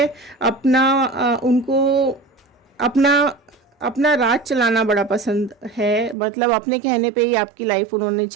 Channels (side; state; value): left; drops out; at 6.2 s